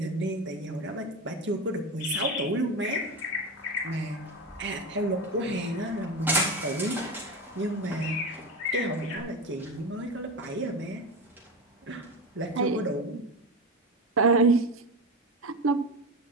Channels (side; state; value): both; normal; correlation 0.21